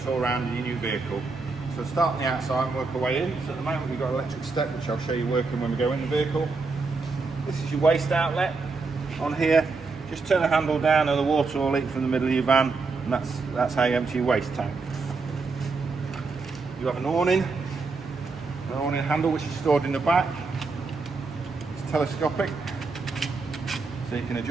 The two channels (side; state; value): left; quieter; 4.1 dB